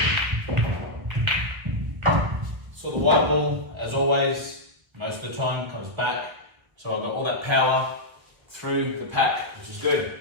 So the white ball, as always, most of the time comes back. So I've got all that power through the pack, which is good.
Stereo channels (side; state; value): left; late; 1.1 ms